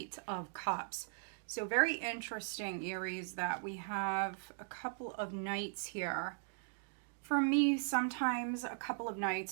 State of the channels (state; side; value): silent; left; digital silence